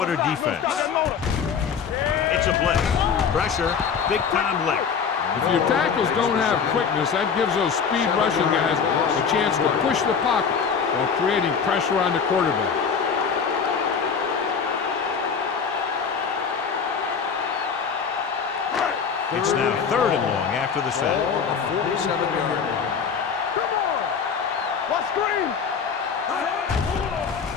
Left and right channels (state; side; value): quieter; right; 6.4 dB